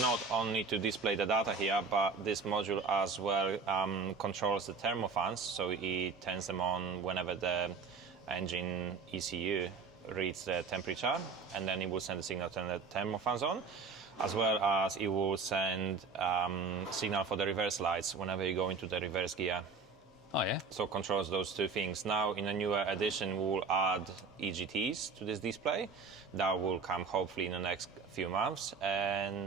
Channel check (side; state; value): left; quieter; 4.9 dB